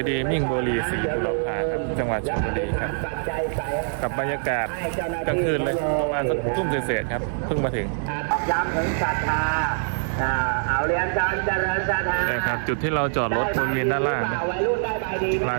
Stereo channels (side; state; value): left; silent; digital silence